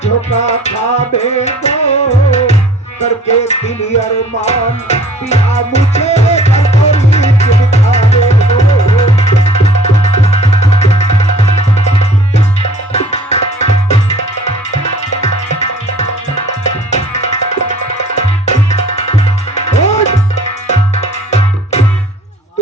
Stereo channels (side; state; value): both; normal; correlation 0.52